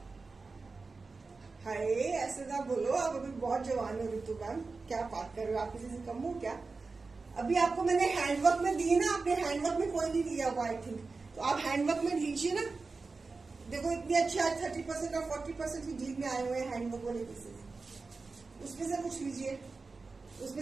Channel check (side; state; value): left; quieter; 4.1 dB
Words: हाय, ऐसे ना बोलो, आप अभी बहुत जवान हो ऋतु मैम, क्या बात कर रहे हो? आप किसी से कम हो क्या? अभी आपको मैंने हैंडवर्क में दिए ना, आपने हैंडवर्क में कोई नहीं लिया हुआ आई थिंक, तो आप हैंडवर्क में लीजिए ना। देखो इतने अच्छे आज 30% और 40% की डील में आए हुए हैं हैंडवर्क वाले पीसेस, उसमें से कुछ लीजिए।